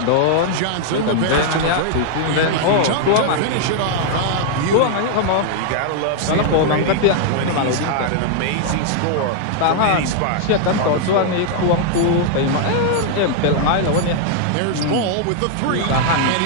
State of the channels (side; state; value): both; different; correlation -0.01